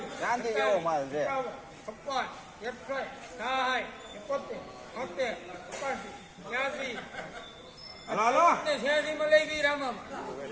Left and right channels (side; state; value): both; identical; correlation 1.00